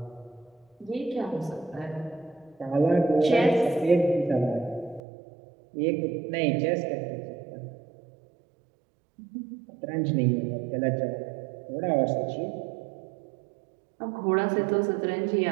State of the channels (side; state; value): left; drops out; at 5.0 s